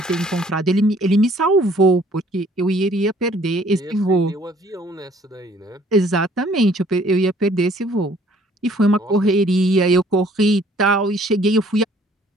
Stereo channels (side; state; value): both; normal; correlation 0.59